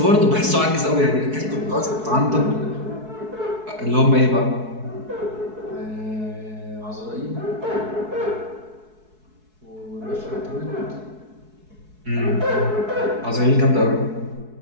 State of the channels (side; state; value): left; late; 4.6 ms